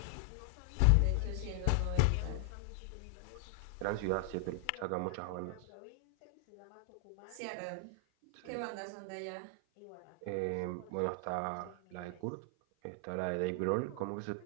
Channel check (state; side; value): different; both; correlation 0.00